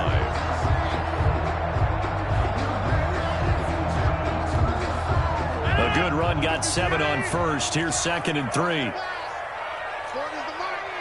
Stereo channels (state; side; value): identical; both; correlation 1.00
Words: A good run, got 7 on first. Here's 2nd and 3.